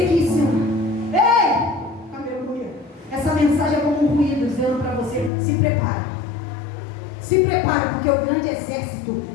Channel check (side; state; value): right; drops out; at 5.3 s